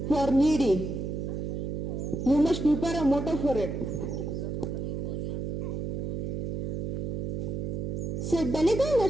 for needy. You must prepare a motto for it. Sir Benegal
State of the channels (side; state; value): right; noise; hum, 3 dB below the sound